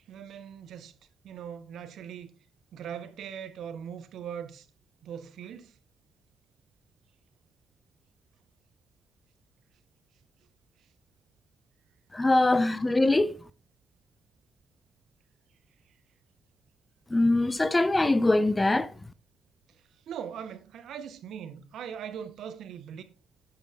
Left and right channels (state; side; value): normal; both; correlation 0.96